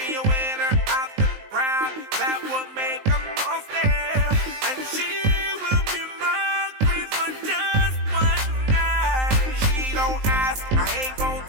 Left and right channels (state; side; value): late; left; 19 ms